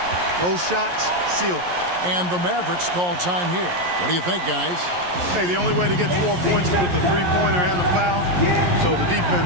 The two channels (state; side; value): late; left; 11 ms